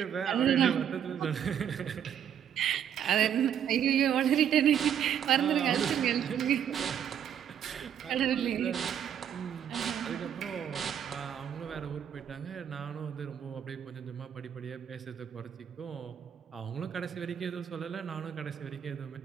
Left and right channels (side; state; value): left; quieter; 9.1 dB